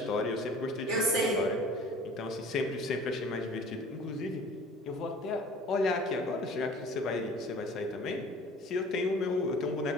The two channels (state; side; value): normal; both; correlation 0.46